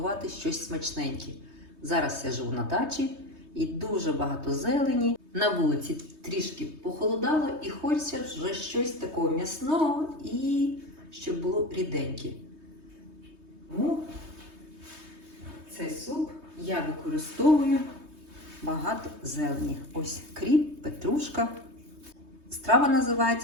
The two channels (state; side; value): late; left; 3.2 ms